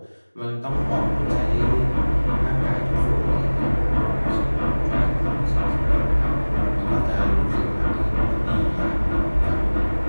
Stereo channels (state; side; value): inverted; both; correlation -1.00